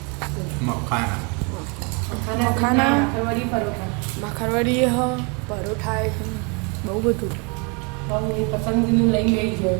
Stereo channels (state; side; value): quieter; left; 32.6 dB